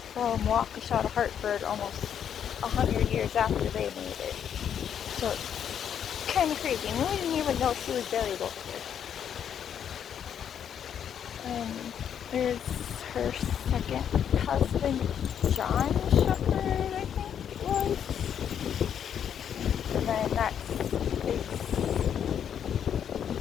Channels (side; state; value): right; quieter; 8.7 dB